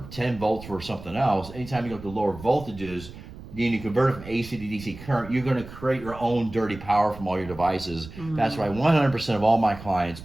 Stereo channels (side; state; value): right; noise; rumble, 15 dB below the sound